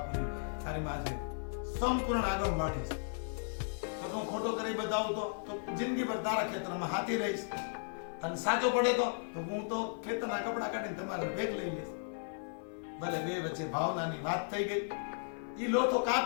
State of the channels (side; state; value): right; silent; 54 dB below the other